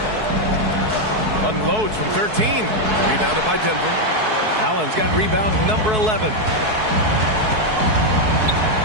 Unloads from 13. Rebounded by Denver. Allen's got rebound number 11.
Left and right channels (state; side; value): late; left; 4.6 ms